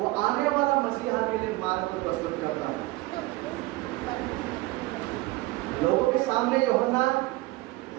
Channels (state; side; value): quieter; left; 20.5 dB